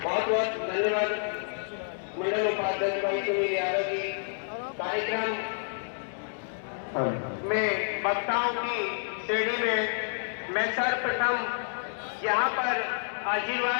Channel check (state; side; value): silent; right; digital silence